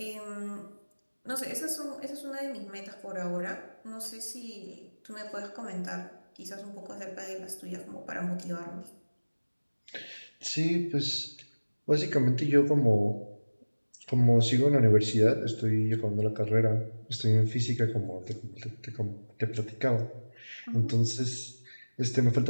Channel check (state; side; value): inverted; both; correlation -1.00